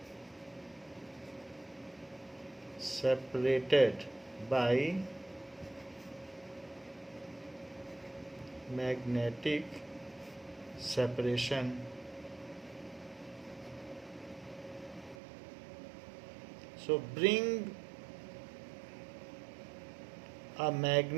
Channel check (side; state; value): left; drops out; at 15.2 s